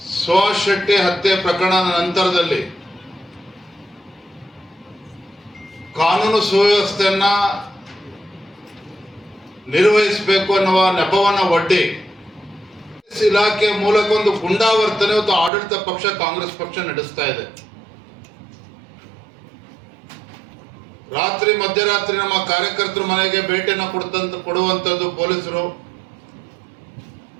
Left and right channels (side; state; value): left; drops out; at 15.5 s